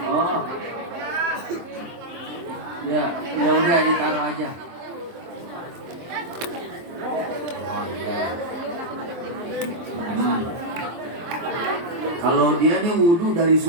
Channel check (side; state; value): left; late; 23 ms